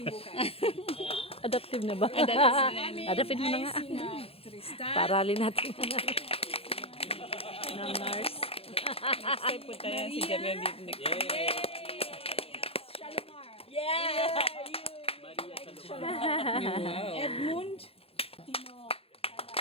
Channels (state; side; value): late; right; 0.28 ms